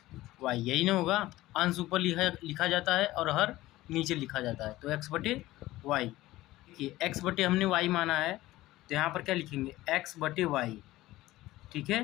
यही ना होगा? अंश ऊपर लिखा जाता है और हर नीचे लिखा जाता है, तो x/y। देखिए x/ हमने y माना है, तो यहाँ पर क्या लिखेंगे? x/y। ठीक है,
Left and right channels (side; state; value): right; quieter; 17.0 dB